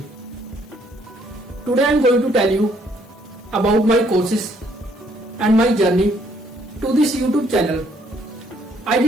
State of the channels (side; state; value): both; normal; correlation 0.67